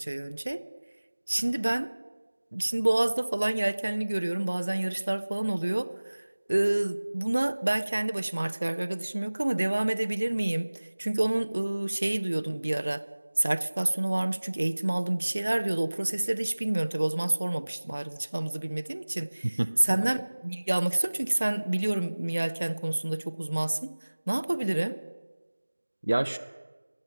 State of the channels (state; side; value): inverted; both; correlation -1.00